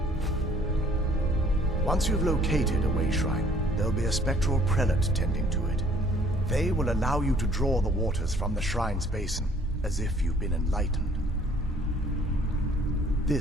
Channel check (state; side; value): normal; both; correlation 0.58